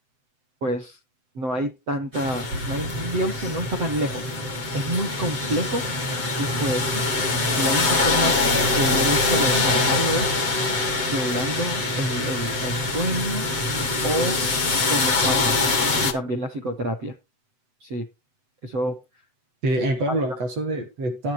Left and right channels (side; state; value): left; late; 7.9 ms